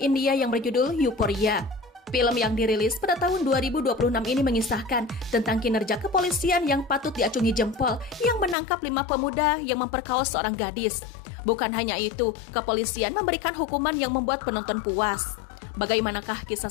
yang berjudul Euphoria. Film yang dirilis pada tahun 2026 ini mengisahkan tentang kinerja kepolisian yang patut diacungi jempol yang menangkap 5 pemuda yang memperkaos seorang gadis. Bukan hanya itu, kepolisian memberikan hukuman yang membuat penonton puas. Bagaimanakah kisah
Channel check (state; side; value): drops out; right; at 8.6 s